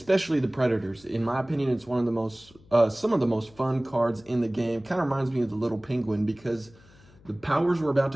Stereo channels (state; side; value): noise; left; hum, 26 dB below the sound